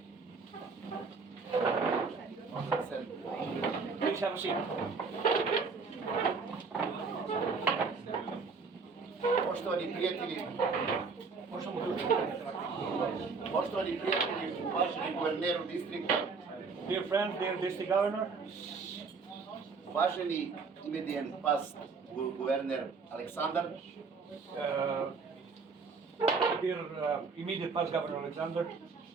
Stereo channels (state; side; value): quieter; left; 4.7 dB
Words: Please have a seat. Poštovani prijatelji, uvaženi guverneru distrikta, dear friends, dear district governor, uvaženi imedijen past guverner Aleksandar, dear immediate past governor Alexander,